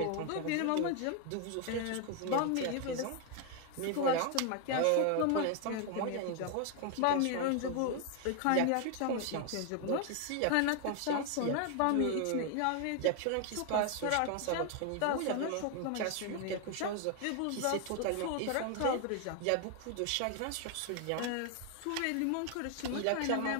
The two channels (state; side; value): different; both; correlation 0.01